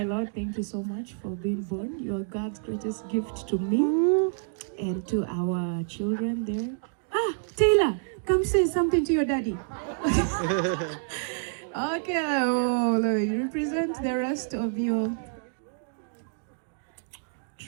Lord. Thank you so much for being born. You are God's greatest gift to me and to our children there. Taylor, come say something to your daddy. Okay, you represent the rest of your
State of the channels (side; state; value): left; silent; digital silence